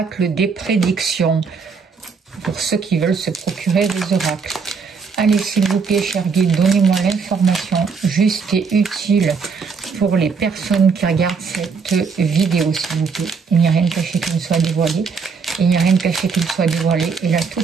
des prédictions pour ceux qui veulent se procurer des oracles. Allez, s'il vous plaît, cher guide, donnez-moi l'information juste et utile pour les personnes qui regardent cette vidéo, s'il vous plaît. Il n'y a rien de caché qui ne soit dévoilé. Il n'y a rien de caché qui ne soit dévoilé. Et la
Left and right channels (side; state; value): left; quieter; 5.3 dB